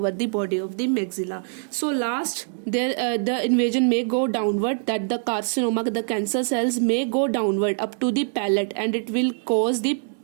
the body of the maxilla. So last, there the invasion may go downward, that the carcinoma, the cancer cells may go downward up to the palate, and it will cause the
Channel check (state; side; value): silent; left; digital silence